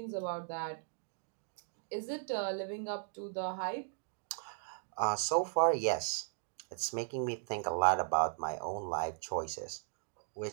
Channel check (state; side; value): silent; left; digital silence